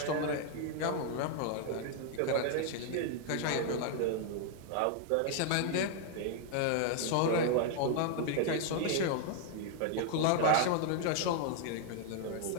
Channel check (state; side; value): different; both; correlation 0.00